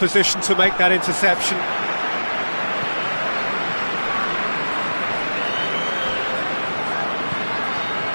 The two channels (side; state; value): both; inverted; correlation -1.00